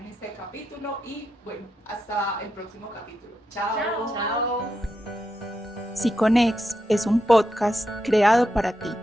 este capítulo y bueno, hasta el próximo capítulo. Chao. Chao. Siconex es un podcast creado para ti.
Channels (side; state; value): both; normal; correlation 0.85